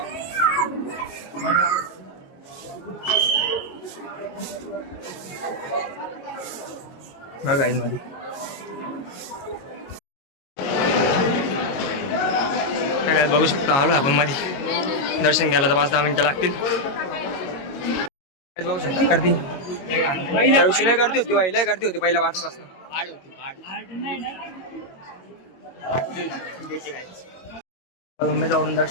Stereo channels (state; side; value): late; right; 22 ms